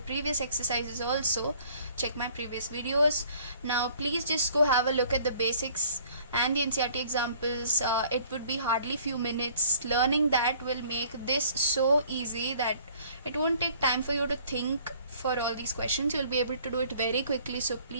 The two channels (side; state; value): both; inverted; correlation -0.55